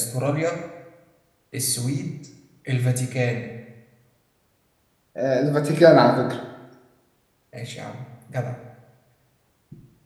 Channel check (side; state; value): both; identical; correlation 1.00